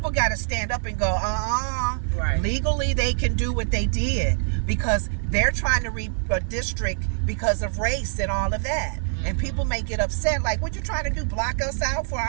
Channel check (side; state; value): left; silent; 62 dB below the other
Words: got to stand up and go, Right. Legally, they can do what they did because they're trying to redistrict because of race and all of that. And people may get upset, like, what you trying to do, block us out for